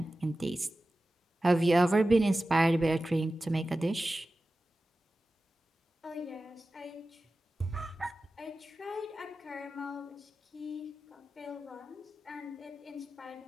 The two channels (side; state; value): both; normal; correlation 0.95